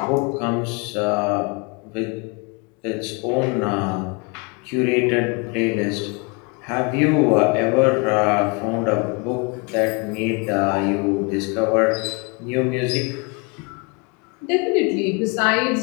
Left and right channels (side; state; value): right; quieter; 30.7 dB